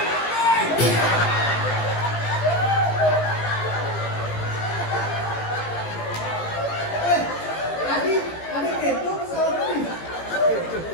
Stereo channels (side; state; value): right; late; 18 ms